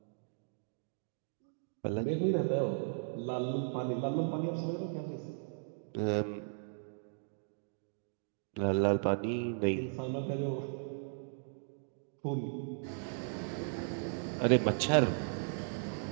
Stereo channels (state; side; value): silent; left; digital silence